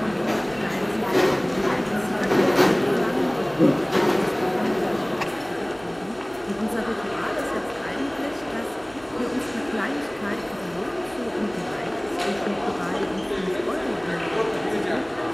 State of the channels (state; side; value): noise; right; hum, 26 dB below the sound